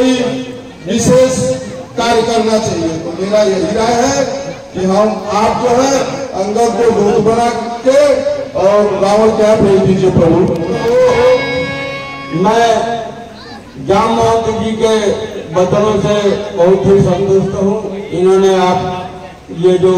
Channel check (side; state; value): both; identical; correlation 1.00